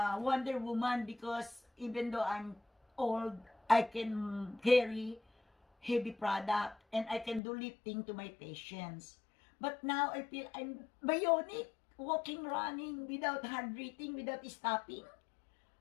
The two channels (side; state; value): right; drops out; at 7.4 s